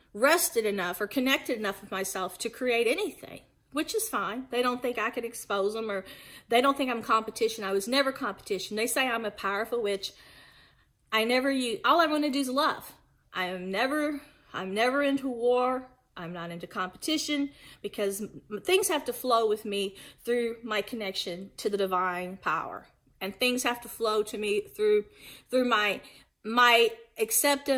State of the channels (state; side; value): identical; both; correlation 1.00